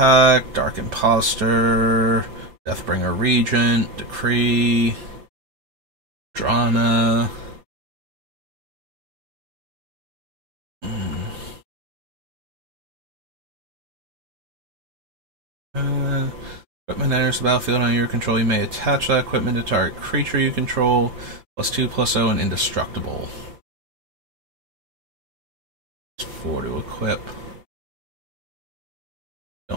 Dark Imposter, Deathbringer Regent, Decree, Drana. Equipment enters the battlefield on your control. You may attach that equipment to target creature you control. +2/+0 and indestructible. It's 4 to equip.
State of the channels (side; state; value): left; late; 5.8 ms